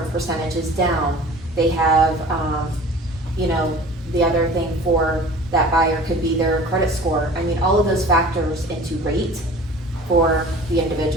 percentages down. They have, you know, the other thing for that buyer could be their credit score. I mean, all of those factors into rate for the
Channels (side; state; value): both; normal; correlation 0.43